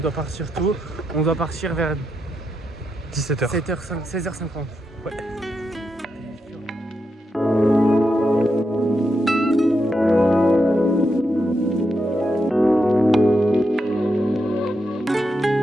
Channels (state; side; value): normal; both; correlation 0.84